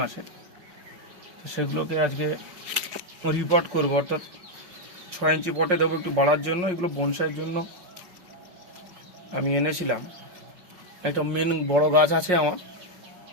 মাসে, সেগুলোকে আজকে রিপোর্ট করব, অর্থাৎ 6 ইঞ্চি পটে দেবো একটু বাড়ার জন্য। এগুলো বনসাইয়ের জন্য আমি এনেছিলাম। একটা মেন বড় গাছ আছে আমার,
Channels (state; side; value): late; left; 5.6 ms